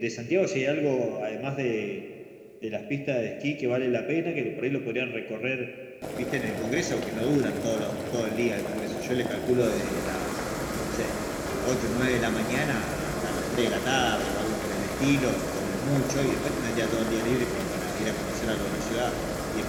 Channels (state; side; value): identical; both; correlation 1.00